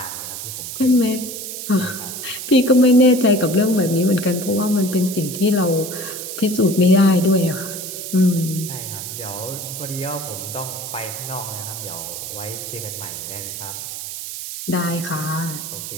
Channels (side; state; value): right; noise; hiss, 8 dB below the sound